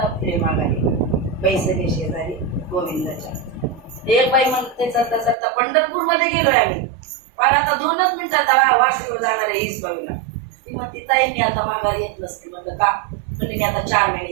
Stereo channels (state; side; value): drops out; left; at 5.4 s